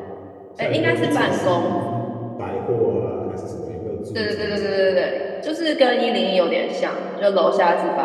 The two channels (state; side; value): identical; both; correlation 1.00